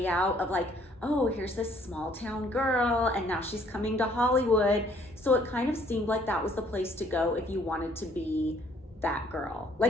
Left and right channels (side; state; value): both; normal; correlation 0.62